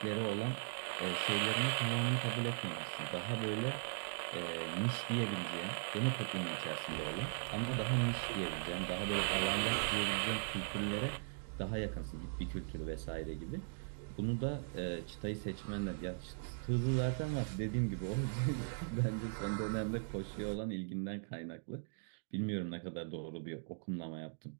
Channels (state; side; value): silent; left; digital silence